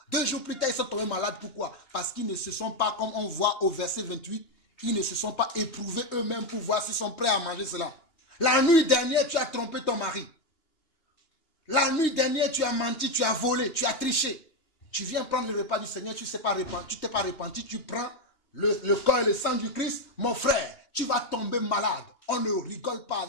2 jours plus tard, ils sont tombés malades. Pourquoi? Parce qu'ils ne se sont pas, comme on voit au verset 28, ils ne se sont pas éprouvés eux-mêmes pour voir s'ils sont prêts à manger cela. La nuit dernière, tu as trompé ton mari. La nuit dernière, tu as menti, tu as volé, tu as triché. Tu viens prendre le repas du Seigneur, tu ne t'es pas repenti, tu prends le corps et le sang du Christ. Mon frère, tu vas tomber malade. On ne rigole pas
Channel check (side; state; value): right; late; 2.9 ms